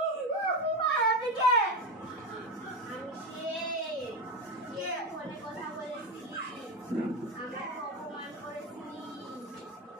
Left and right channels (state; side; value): normal; both; correlation 0.17